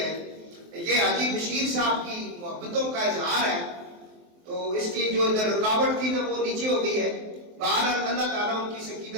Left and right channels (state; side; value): late; left; 23 ms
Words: یہ حاجی بشیر صاحب کی محبتوں کا اظہار ہے، تو اس کی جو ادھر رکاوٹ تھی نا وہ نیچے ہو گئی ہے، بہرحال اللہ تعالیٰ ان کی